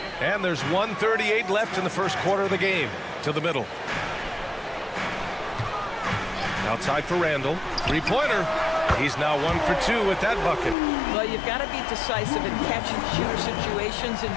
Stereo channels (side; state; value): right; drops out; at 10.8 s